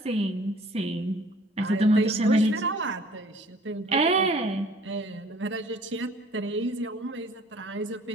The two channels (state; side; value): normal; both; correlation 0.53